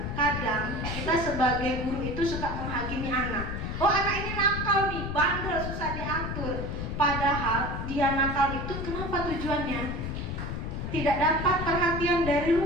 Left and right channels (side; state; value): left; noise; rumble, 4 dB below the sound